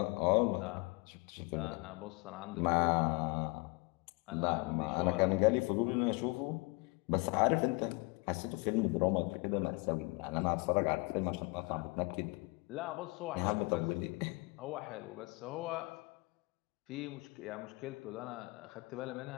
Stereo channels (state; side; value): quieter; right; 27.7 dB